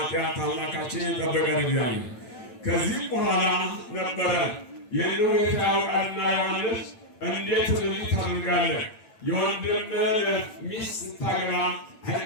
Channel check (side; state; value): right; late; 8.9 ms